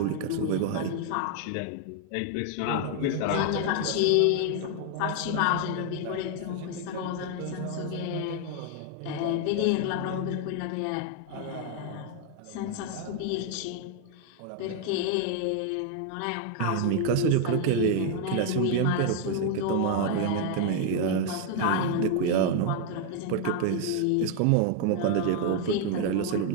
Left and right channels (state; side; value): different; both; correlation 0.00